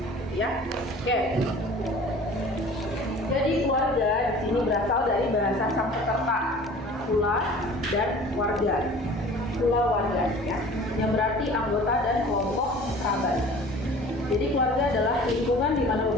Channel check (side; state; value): both; normal; correlation 0.45